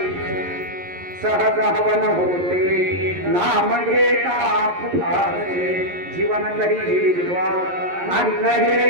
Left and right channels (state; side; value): late; left; 11 ms